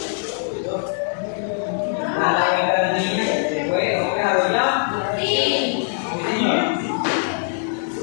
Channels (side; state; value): right; silent; 64 dB below the other